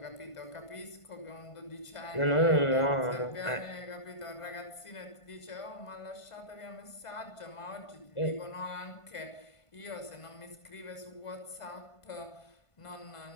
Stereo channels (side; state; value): right; late; 1.5 ms